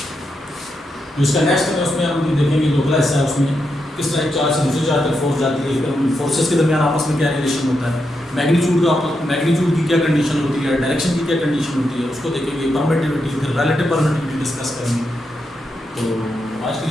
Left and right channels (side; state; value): both; normal; correlation 0.84